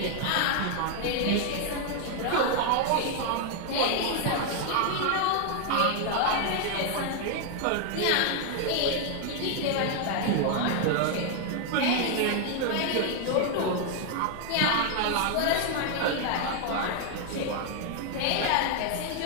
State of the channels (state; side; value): different; both; correlation 0.00